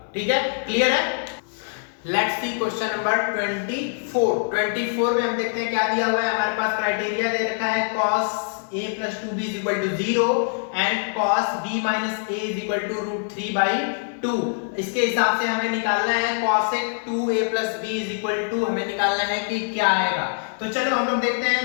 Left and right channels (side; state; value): right; silent; 62 dB below the other